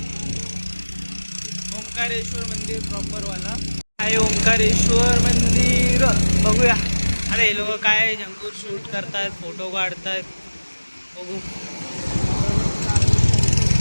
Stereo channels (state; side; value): inverted; both; correlation -1.00